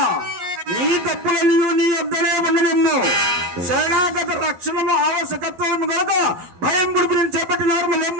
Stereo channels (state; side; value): late; left; 11 ms